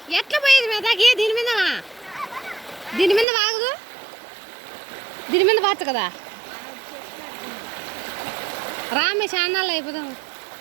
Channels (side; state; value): left; drops out; at 3.2 s